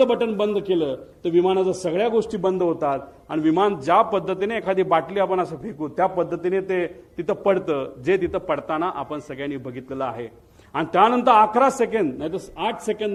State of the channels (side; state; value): both; identical; correlation 1.00